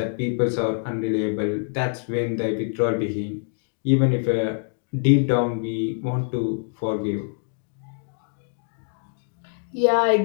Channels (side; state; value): right; silent; digital silence